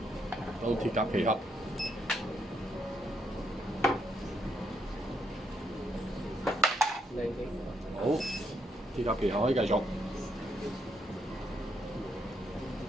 到鐵甲旗盒。好，鐵甲旗盒可以繼續。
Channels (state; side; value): normal; both; correlation 0.76